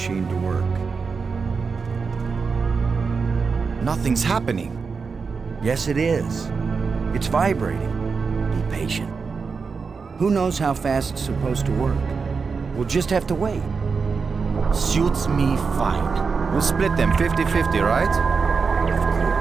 to work. Nothing's happening. Yes, it is. It's vibrating. Be patient. Who knows how fast it's supposed to work? We'll just have to wait. Suits me fine. We'll split them 50-50, right? Of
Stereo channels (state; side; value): quieter; left; 5.1 dB